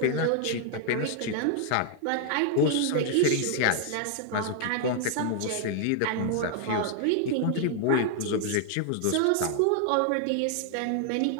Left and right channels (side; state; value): both; different; correlation 0.00